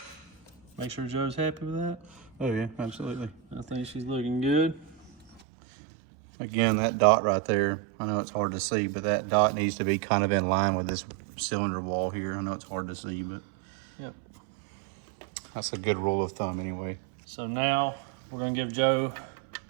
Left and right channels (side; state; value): left; drops out; at 5.4 s